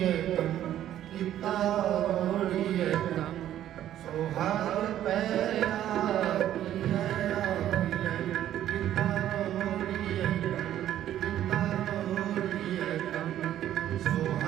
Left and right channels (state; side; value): quieter; left; 11.8 dB